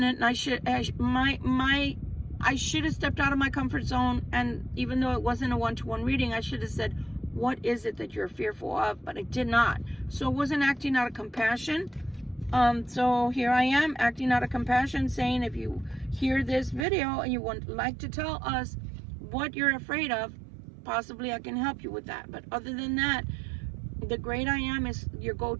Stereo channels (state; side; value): drops out; left; at 16.9 s